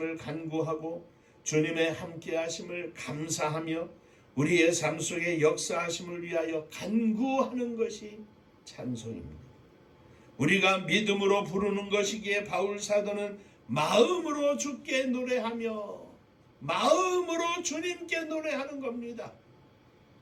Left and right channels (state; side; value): identical; both; correlation 1.00